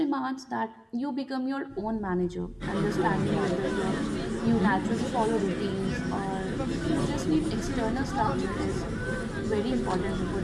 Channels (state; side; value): identical; both; correlation 1.00